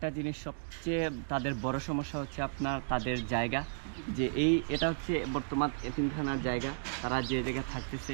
জিনিস সবচেয়ে তাদের বড় সমস্যা হচ্ছে তাদের জায়গা। যে এটা হচ্ছে বর্তমান এতিমখানার জায়গা, তারা যে জায়গায় থাকতেছে,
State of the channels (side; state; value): left; silent; digital silence